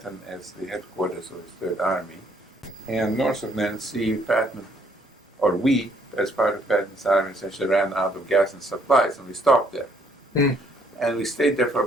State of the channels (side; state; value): both; normal; correlation 0.66